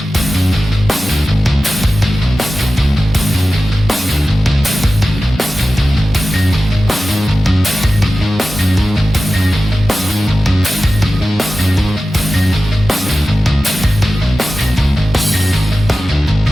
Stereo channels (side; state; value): both; normal; correlation 0.95